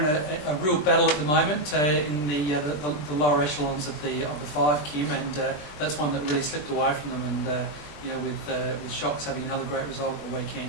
a real battle at the moment in the lower echelons of the five, Kim, and that's one that really slipped away from them. And with Shocks having another great result at the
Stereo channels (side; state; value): right; late; 20 ms